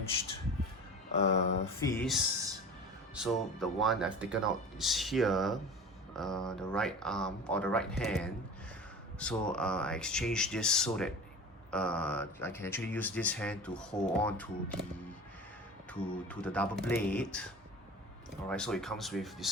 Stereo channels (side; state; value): both; normal; correlation 0.36